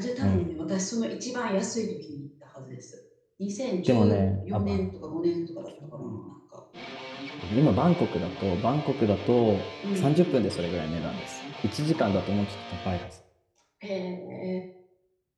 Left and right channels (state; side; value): identical; both; correlation 1.00